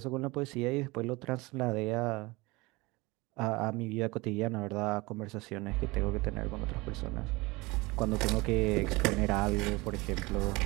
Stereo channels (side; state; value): left; quieter; 23.4 dB